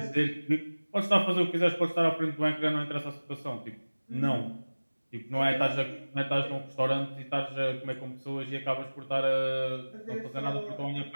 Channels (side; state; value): both; inverted; correlation -1.00